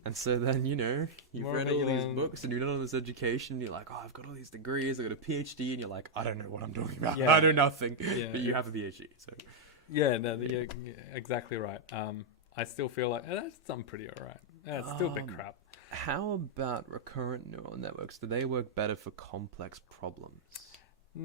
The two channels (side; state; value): both; normal; correlation -0.04